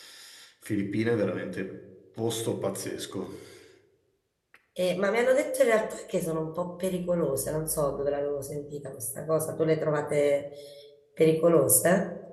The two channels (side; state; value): both; identical; correlation 1.00